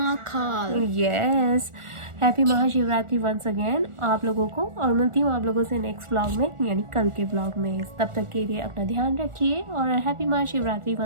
Yes, happy Mahashivratri once again आप लोगों को, और मिलती हूँ आप लोगों से नेक्स्ट व्लॉग में, यानी कल के व्लॉग में। तब तक के लिए अपना ध्यान रखिए और happy Mahashivratri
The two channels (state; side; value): late; left; 1.4 ms